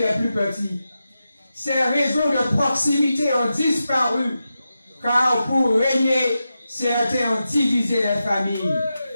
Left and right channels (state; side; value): inverted; both; correlation -0.90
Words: plus petits. Ces réseaux de proximité ont disparu, car pour régner, certains ont divisé les familles.